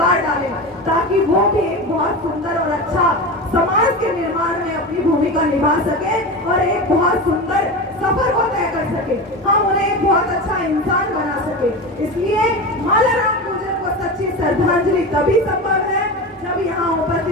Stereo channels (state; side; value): normal; both; correlation 0.25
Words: डालें, ताकि वो भी एक बहुत सुंदर और अच्छा समाज के निर्माण में अपनी भूमिका निभा सके और एक बहुत सुंदर सफर को तय कर सके, हम उन्हें एक बहुत अच्छा इंसान बना सके। इसलिए मालाराम गुर्जर को सच्ची श्रद्धांजलि तभी संभव है जब यहाँ